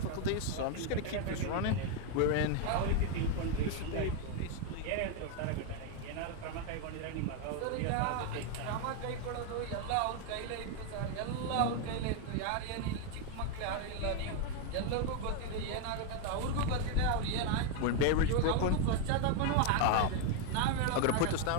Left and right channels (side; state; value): both; different; correlation 0.01